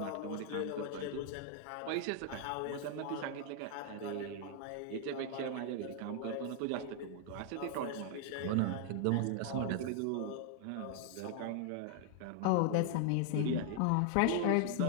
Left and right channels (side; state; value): both; different; correlation 0.00